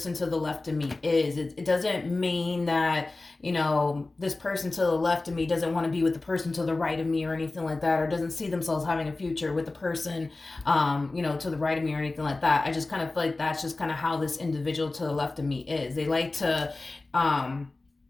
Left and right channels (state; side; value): quieter; right; 3.2 dB